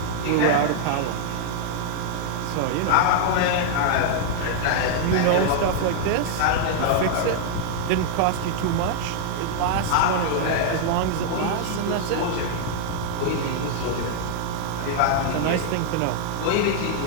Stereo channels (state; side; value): different; both; correlation -0.01